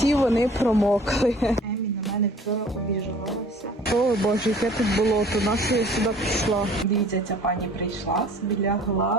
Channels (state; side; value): normal; both; correlation 0.50